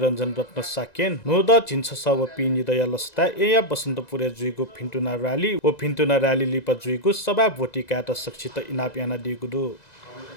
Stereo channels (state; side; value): late; right; 2.0 ms